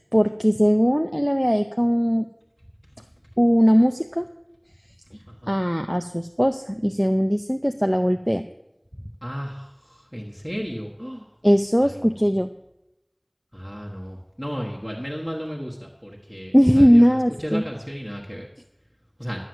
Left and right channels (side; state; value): both; identical; correlation 1.00